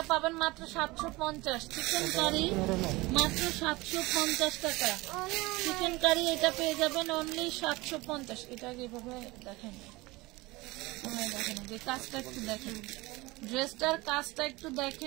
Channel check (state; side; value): quieter; left; 21.8 dB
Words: পাবেন মাত্র 750। চিকেন কারি মাত্র 750 টাকা। চিকেন কারি এটা পেয়ে যাবেন অনলি 750। এটা এভাবে দেখেন, দেখেন যে কাজটা একটু দেখেন, ড্রেসটার কাজটা একটু